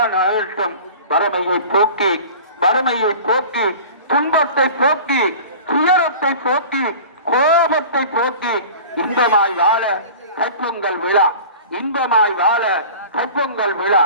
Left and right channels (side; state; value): both; inverted; correlation -0.40